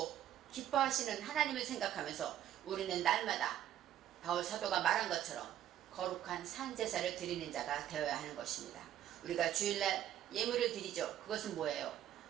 기뻐하시는 하나님을 생각하면서 우리는 날마다 바울 사도가 말한 것처럼 거룩한 산제사를 드리는 자가 되어야 하는 것입니다. 우리가 주일날 예물을 드리죠. 그것은 뭐예요?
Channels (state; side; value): quieter; left; 11.6 dB